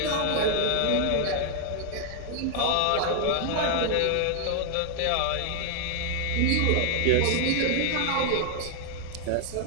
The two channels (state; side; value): different; both; correlation 0.00